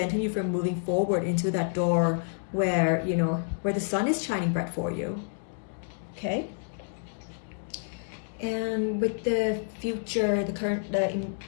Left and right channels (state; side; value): silent; right; digital silence